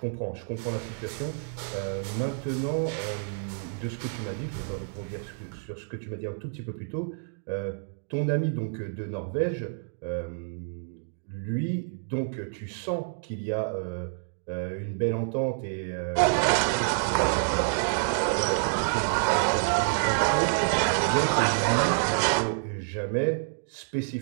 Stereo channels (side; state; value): left; silent; digital silence